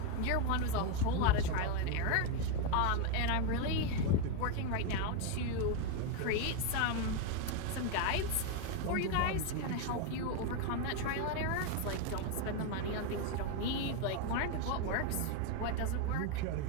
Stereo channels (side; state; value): both; different; correlation 0.02